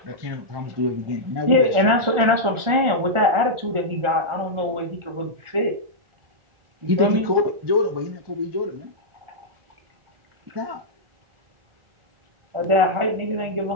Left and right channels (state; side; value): late; left; 1.4 ms